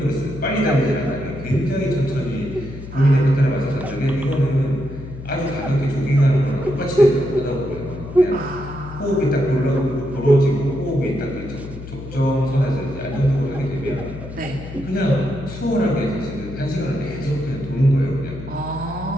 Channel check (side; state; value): left; noise; hum, 12 dB below the sound